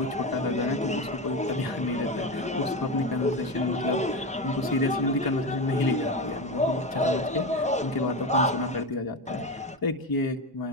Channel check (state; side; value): normal; both; correlation 0.19